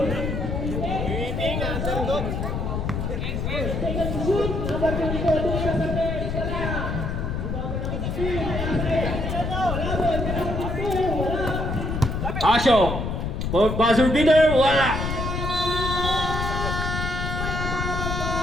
Asyong, for buzzer beater, wala.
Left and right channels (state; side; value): noise; left; rumble, 2 dB below the sound